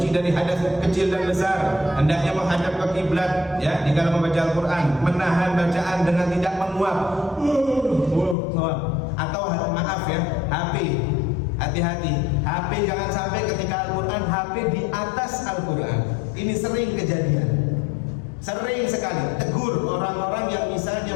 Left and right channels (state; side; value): drops out; right; at 8.3 s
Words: dari hadas kecil dan besar, hendaknya menghadap ke kiblat ya di dalam membaca Al-Quran, menahan bacaan dengan tidak menguap atau maaf ya, HP. Hati-hati, HP jangan sampai ketika Al-Quran, HP di atas Al-Quran. Ini sering kejadian, sering sekali. Tegur orang-orang yang misalnya